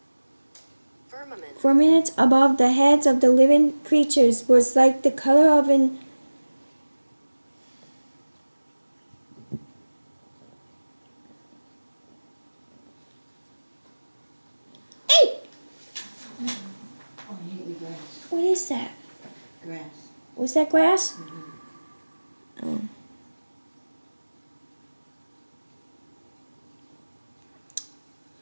firmament above the heads of the living creatures was like the color of an what is that? Grass. Was that grass? Oh.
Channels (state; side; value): inverted; both; correlation -1.00